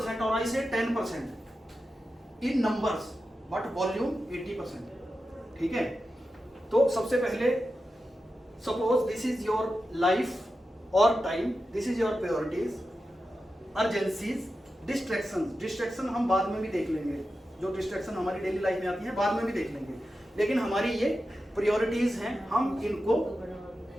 और आई से 10% इन नंबर्स, बट वॉल्यूम 80%, ठीक है। तो सबसे पहले suppose this is your life और time, this is your priorities, urgencies, distraction हम बाद में भी देख लेंगे, जो डिस्ट्रैक्शन हमारी डेली लाइफ में आती है बाद में भी देख लेंगे, लेकिन हमारी ये प्रायोरिटीज हैं, हम इनको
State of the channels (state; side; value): normal; both; correlation 0.91